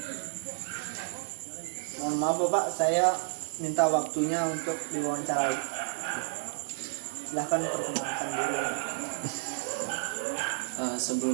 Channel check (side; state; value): left; silent; 57 dB below the other